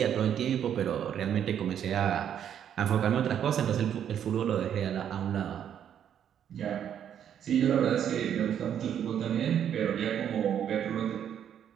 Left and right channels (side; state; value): left; quieter; 9.3 dB